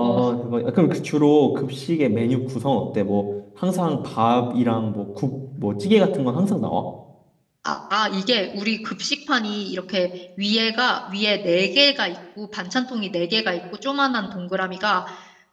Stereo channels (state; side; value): identical; both; correlation 1.00